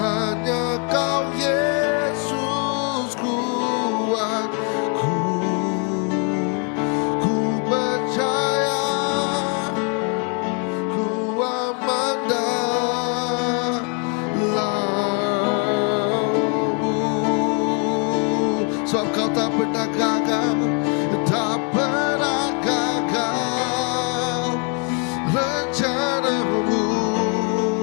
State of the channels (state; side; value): quieter; right; 38.6 dB